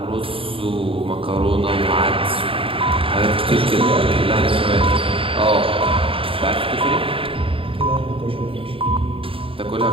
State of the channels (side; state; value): left; late; 0.26 ms